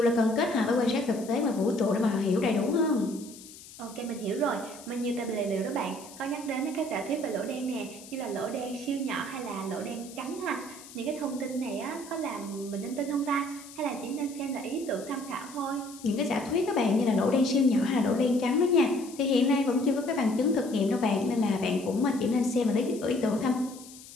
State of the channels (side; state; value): left; noise; hiss, 18 dB below the sound